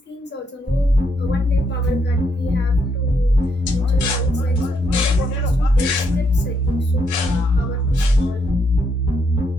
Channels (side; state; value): both; normal; correlation 0.76